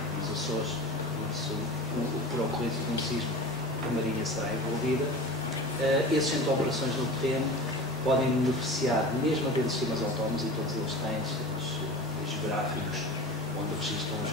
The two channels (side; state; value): both; normal; correlation 0.34